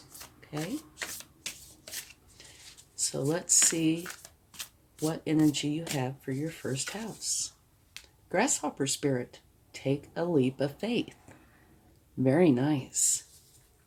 Okay? So let's see what energy you have for your first house. Grasshopper spirit, take a leap of faith. Very nice.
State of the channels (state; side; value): identical; both; correlation 1.00